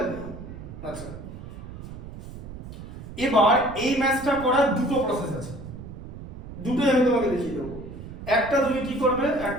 আচ্ছা এবার এই ম্যাথসটা করার দুটো প্রসেস আছে, দুটোই আমি তোমাকে দেখিয়ে দেবো। একটা তুমি কি করবে,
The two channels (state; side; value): noise; right; rumble, 12 dB below the sound